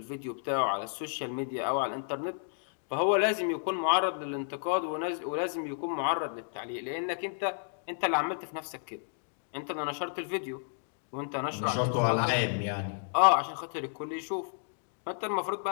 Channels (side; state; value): right; silent; digital silence